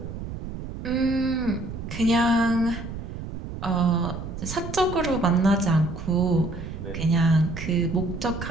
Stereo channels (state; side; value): noise; right; rumble, 8 dB below the sound